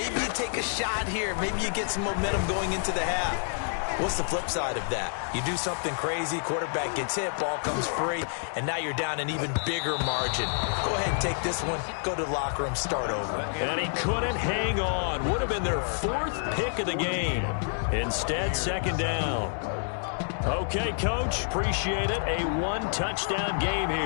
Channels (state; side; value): silent; right; digital silence